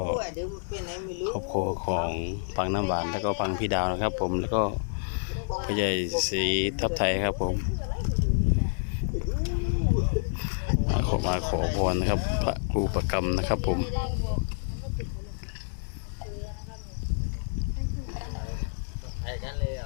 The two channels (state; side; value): silent; right; digital silence